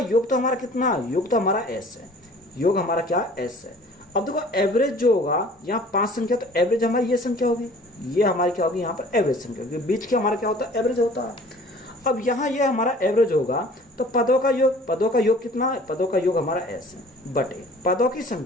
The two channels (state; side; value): normal; both; correlation 0.49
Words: योग तो हमारा कितना, योग तो हमारा s है, योग हमारा क्या, s है। अब देखो एवरेज जो होगा, यहाँ 5 संख्या, तो एवरेज हमारी ये संख्या होगी, ये हमारी क्या होगी, यहाँ पर एवरेज संख्या होगी। बीच के हमारा क्या होता है, एवरेज होता है। अब यहाँ ये हमारा एवरेज होगा, तो पदों का योग कितना है, पदों का योग हमारा s है, बटे पदों की